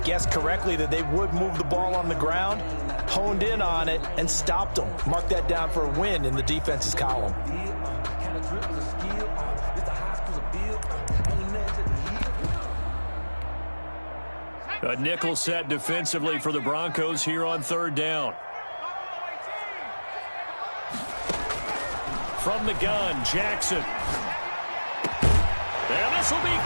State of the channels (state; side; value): inverted; both; correlation -1.00